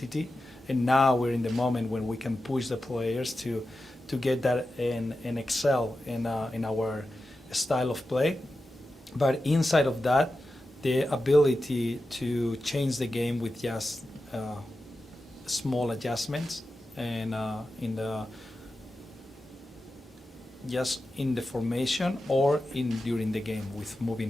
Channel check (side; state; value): both; normal; correlation 0.92